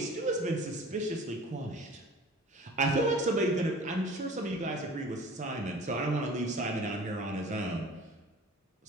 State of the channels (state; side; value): normal; both; correlation 0.43